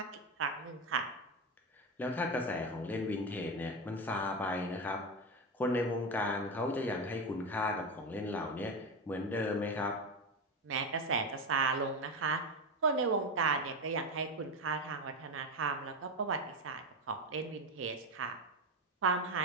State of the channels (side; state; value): both; normal; correlation 0.16